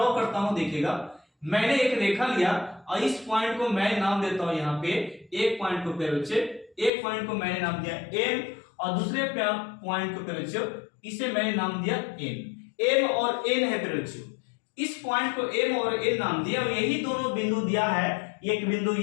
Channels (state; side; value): drops out; right; at 6.9 s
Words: करता हूं, देखिएगा मैंने एक रेखा लिया और इस पॉइंट को मैं नाम देता हूं यहाँ पे, एक पॉइंट को पे बच्चे, एक पॉइंट को मैंने नाम दिया M और दूसरे पॉइंट को पे बच्चों इसे मैंने नाम दिया N। M और N है पे बच्चों, इस पॉइंट को M और N नाम दिया और यही दोनों बिंदु दिया है, एक बिंदु